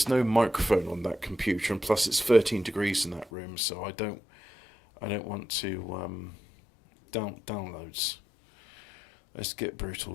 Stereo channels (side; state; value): right; drops out; at 3.3 s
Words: no microphone on that computer, and plus it's 13 degrees in that room, so I don't I don't want to downloads. Let's get Brutal